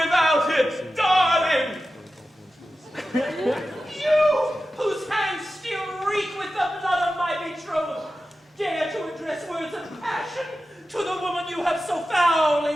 without it, darling! You, whose hands still reek with the blood of my betrothed, dare to address words of passion to the woman you have so foully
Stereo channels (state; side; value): normal; both; correlation 0.93